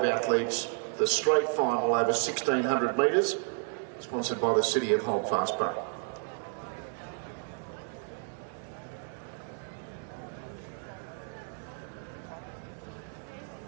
athletes, the straight final over 1,600 metres, sponsored by the City of Holdfast Bay.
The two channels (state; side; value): silent; left; 57 dB below the other